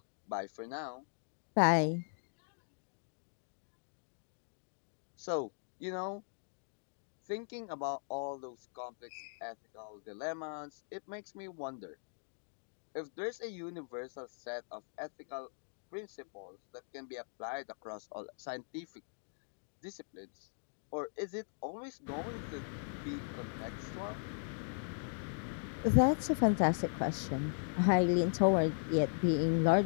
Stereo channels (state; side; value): silent; right; digital silence